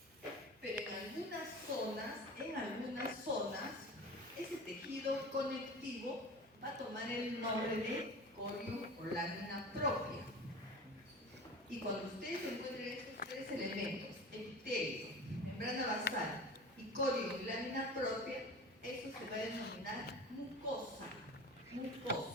Pero en algunas zonas, ese tejido conectivo va a tomar el nombre de corio o lámina propia. Y cuando ustedes encuentren estos tres elementos, epitelio, membrana basal y corio y lámina propia, eso se va a denominar mucosa.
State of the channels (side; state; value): both; normal; correlation 0.35